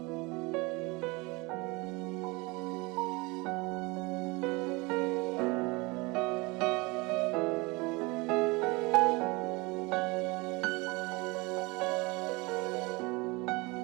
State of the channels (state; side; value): quieter; left; 25.3 dB